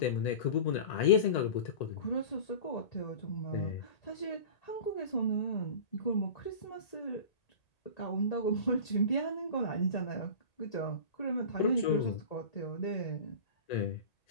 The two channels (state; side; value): late; right; 1.8 ms